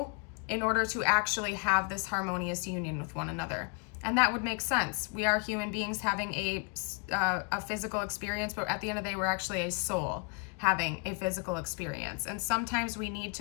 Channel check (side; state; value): right; quieter; 33.9 dB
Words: in order to actually have this harmonious union with one another. And that would make sense. We are human beings having a physical experience, but at the end of the day, we're actually a soul having a physical experience. And sometimes we need